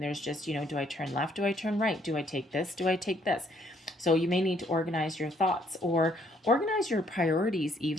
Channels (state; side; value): normal; both; correlation 0.67